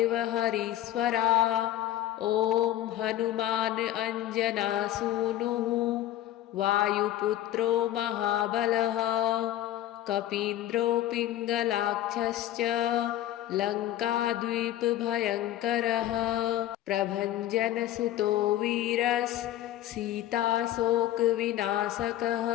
हरीश्वरा ॐ हनुमान् अञ्जनासूनुः वायुपुत्रो महाबलः कपीन्द्रो पिङ्गलाक्षश्च लङ्काद्वीपभयङ्करः प्रभञ्जनसुतो वीरस्सीताशोकविनाशकः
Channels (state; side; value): quieter; right; 13.3 dB